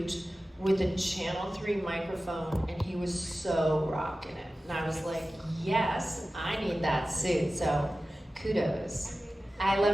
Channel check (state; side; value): normal; both; correlation 0.95